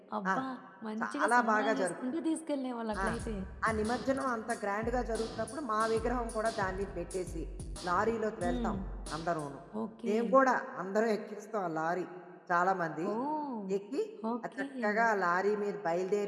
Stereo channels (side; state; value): both; identical; correlation 1.00